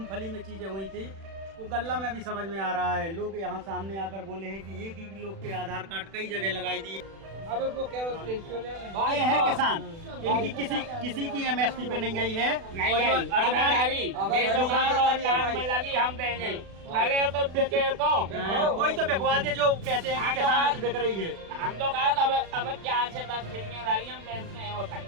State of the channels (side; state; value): left; late; 36 ms